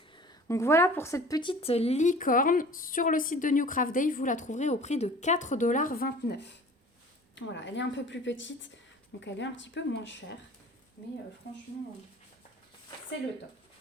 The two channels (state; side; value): normal; both; correlation 0.45